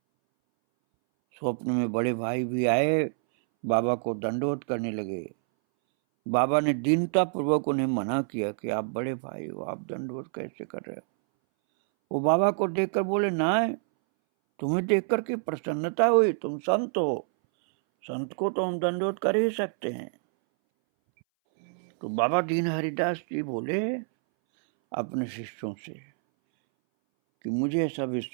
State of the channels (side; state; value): left; silent; 60 dB below the other